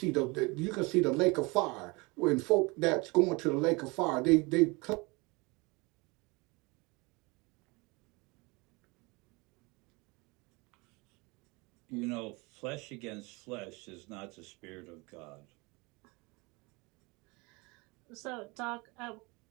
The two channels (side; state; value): left; quieter; 26.4 dB